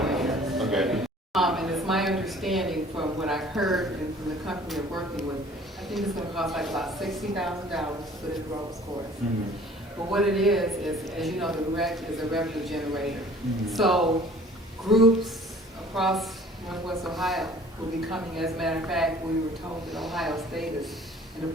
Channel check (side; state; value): both; normal; correlation 0.51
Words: Okay. And it's my understanding from what I've heard and from the company they're working with, I think it's gonna cost like about $60,000 to put in the roads course. But what it is, as you know, the rec is a revenue generator. So groups across Northwest Ohio will be coming. As a matter of fact, we were told that Ohio State is in the